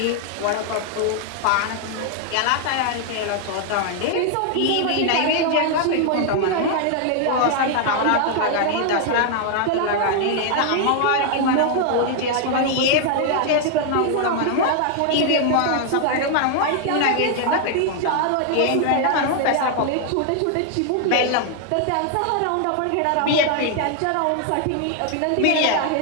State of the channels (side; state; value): both; different; correlation 0.00